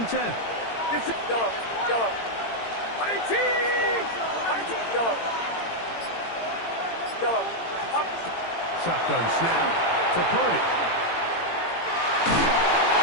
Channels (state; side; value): late; right; 18 ms